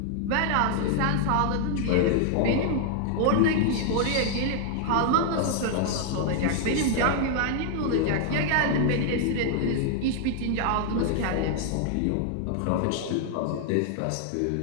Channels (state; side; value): different; both; correlation 0.00